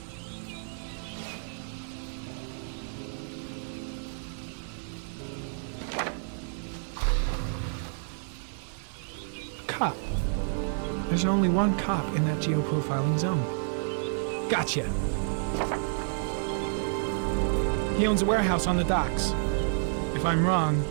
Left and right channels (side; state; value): left; silent; digital silence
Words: Cop. There's only one cop in that geoprofiling zone. Gotcha. He owns a warehouse on the docks. If I'm wrong,